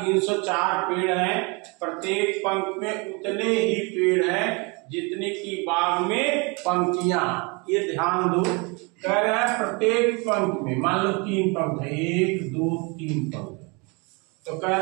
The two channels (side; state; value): left; quieter; 29.8 dB